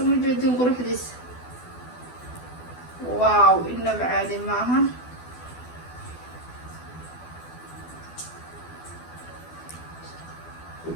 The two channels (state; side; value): late; right; 12 ms